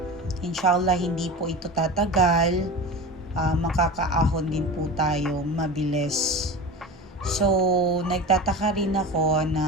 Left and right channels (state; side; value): normal; both; correlation 0.30